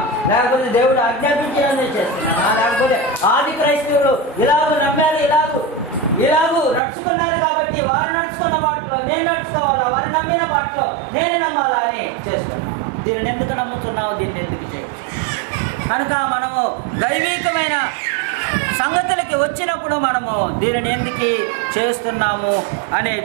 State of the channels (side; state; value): left; drops out; at 6.8 s